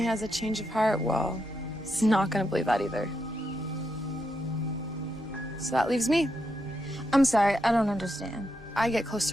has a change of heart, well, he's not gonna believe that either. So that leaves me. I'm sorry, I don't understand. I get close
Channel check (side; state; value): both; normal; correlation 0.83